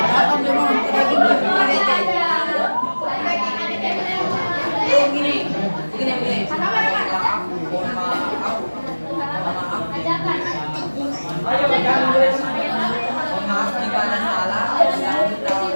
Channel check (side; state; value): both; inverted; correlation -1.00